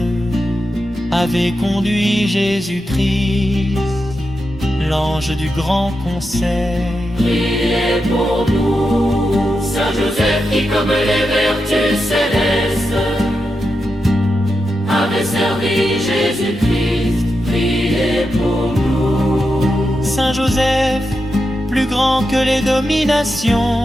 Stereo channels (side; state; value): both; normal; correlation 0.88